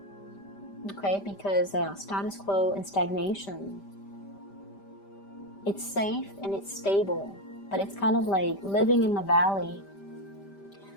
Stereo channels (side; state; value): right; late; 5.1 ms